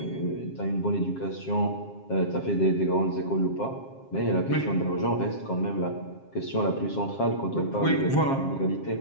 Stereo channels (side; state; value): right; late; 7.5 ms